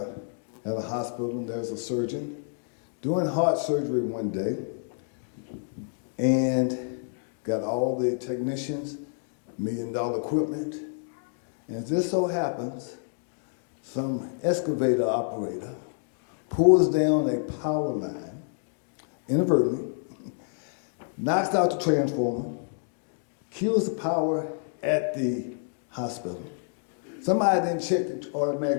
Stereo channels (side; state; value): right; silent; digital silence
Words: at a hospital there's a surgeon doing heart surgery one day and got all the technicians, $1 million equipment, and it just so happens some excavator operator pulls down a power line inadvertently, knocks out the transformer, kills the power at the hospital. Somebody then checked the